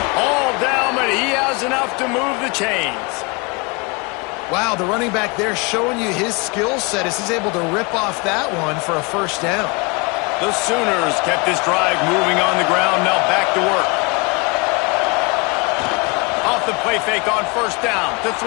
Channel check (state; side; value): quieter; right; 29.1 dB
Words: All down, but he has enough to move the chains. Wow, the running back there showing you his skill set as he's able to rip off that one for a first down. The Sooners kept this drive moving on the ground, now back to work. Off the play fake on 1st down to